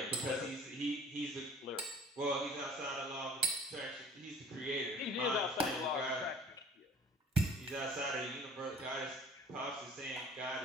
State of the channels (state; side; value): normal; both; correlation 0.49